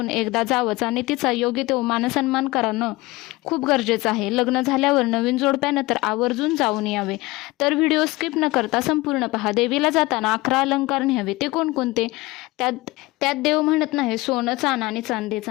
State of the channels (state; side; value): quieter; right; 21.2 dB